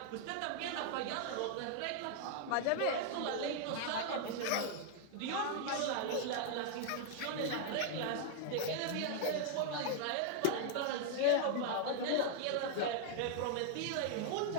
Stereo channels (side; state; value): both; different; correlation 0.00